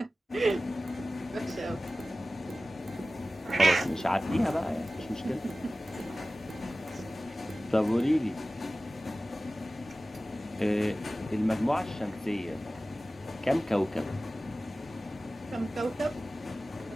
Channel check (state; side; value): normal; both; correlation 0.96